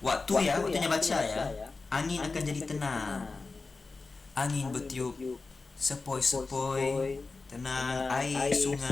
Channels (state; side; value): quieter; right; 3.9 dB